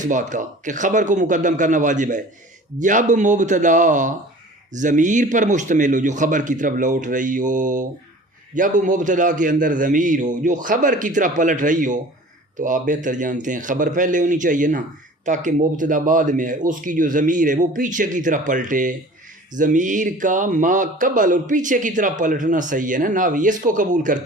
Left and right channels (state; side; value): normal; both; correlation 0.44